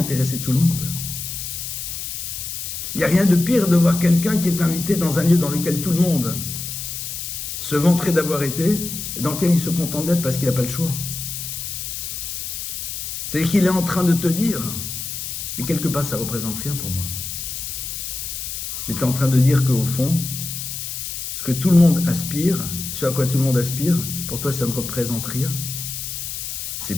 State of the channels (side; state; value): left; noise; hiss, 6 dB below the sound